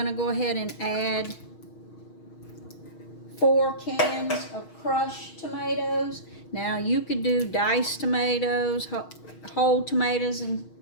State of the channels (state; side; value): late; right; 6.4 ms